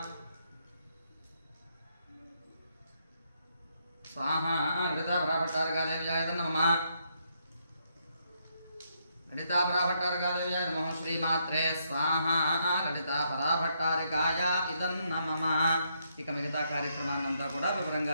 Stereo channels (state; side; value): inverted; both; correlation -0.76